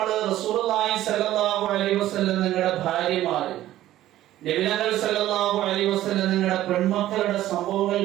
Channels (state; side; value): quieter; left; 13.9 dB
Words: റസൂലുള്ളാഹി സ്വല്ലല്ലാഹു അലൈഹി വസല്ലം നിങ്ങളുടെ ഭാര്യമാര്, നബികൾ സല്ലല്ലാഹു അലൈഹി വസല്ലം നിങ്ങളുടെ പെൺമക്കളുടെ സംഭവങ്ങൾ